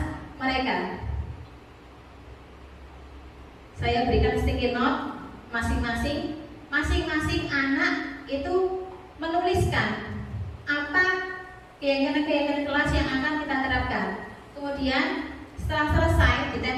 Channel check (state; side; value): identical; both; correlation 1.00